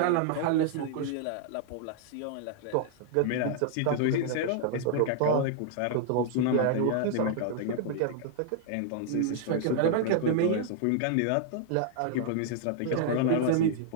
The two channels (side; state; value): both; different; correlation -0.01